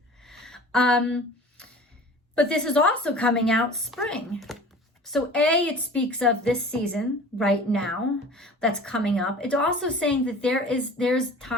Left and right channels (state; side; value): normal; both; correlation 0.42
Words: But this is also coming out spring. So it speaks of this season right now that's coming up. It's also saying that there's